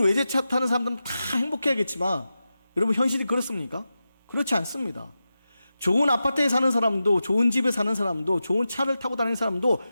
외제차 타는 사람들은 다 행복해야겠지만 여러분 현실이 그렇습니까? 그렇지 않습니다. 좋은 아파트에 사는 사람도, 좋은 집에 사는 사람도, 좋은 차를 타고 다니는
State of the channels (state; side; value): inverted; both; correlation -0.92